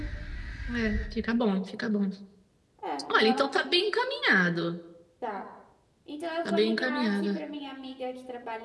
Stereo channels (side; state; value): both; identical; correlation 1.00